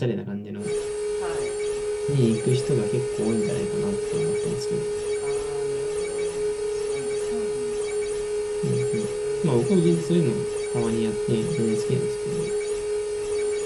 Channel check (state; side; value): identical; both; correlation 1.00